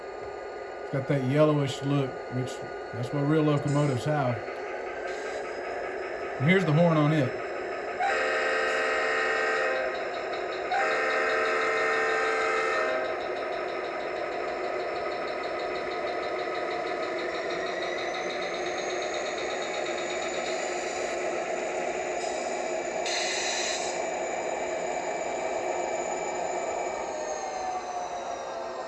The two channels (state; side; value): identical; both; correlation 1.00